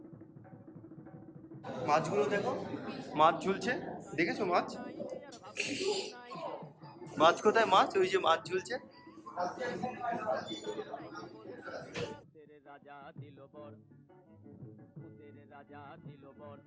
মাছগুলো দেখো, মাছ ঝুলছে, দেখেছো মাছ? মাছ কোথায়? মাছ ওই যে মাছ ঝুলছে। ভূতের রাজা দিল বর, ভূতের রাজা দিল বর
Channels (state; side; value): identical; both; correlation 1.00